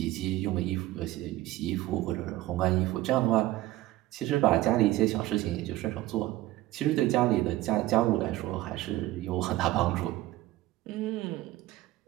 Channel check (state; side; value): quieter; left; 16.4 dB